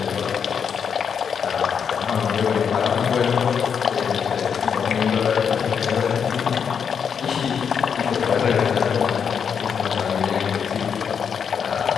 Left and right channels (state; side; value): quieter; right; 7.0 dB